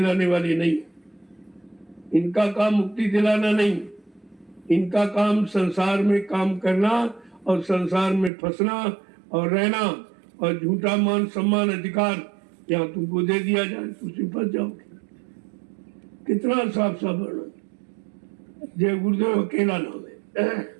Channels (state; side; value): drops out; left; at 8.3 s